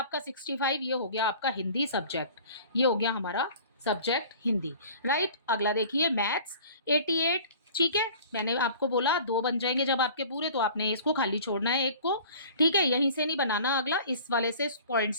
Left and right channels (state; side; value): inverted; both; correlation -0.45